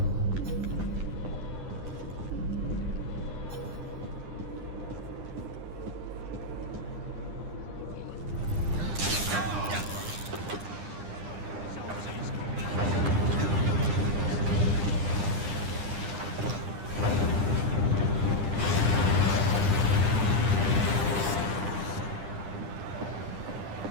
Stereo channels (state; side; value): late; left; 9.9 ms